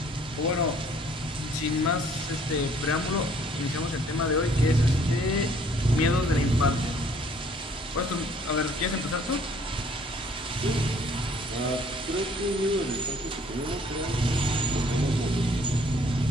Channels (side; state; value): both; normal; correlation 0.60